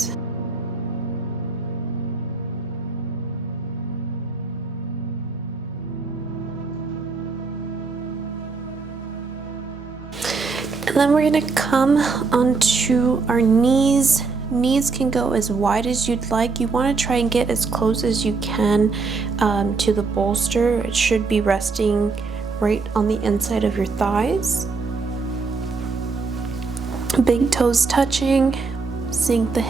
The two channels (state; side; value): quieter; left; 4.3 dB